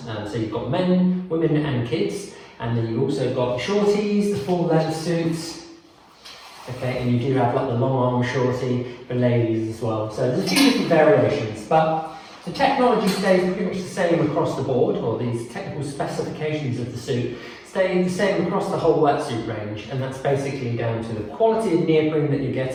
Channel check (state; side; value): identical; both; correlation 1.00